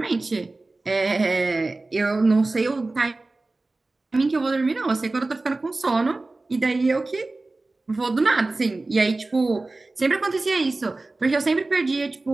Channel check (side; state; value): left; quieter; 3.2 dB